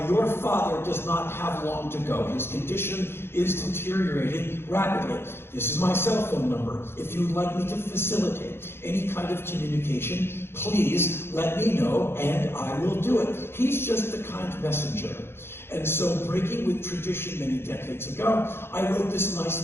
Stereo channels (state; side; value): late; right; 0.11 ms